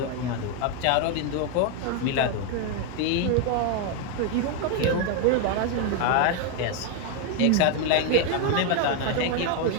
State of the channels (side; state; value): both; different; correlation 0.01